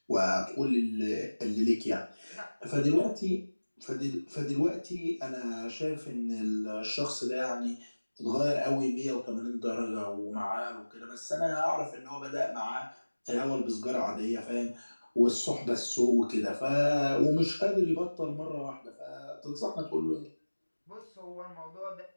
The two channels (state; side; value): inverted; both; correlation -1.00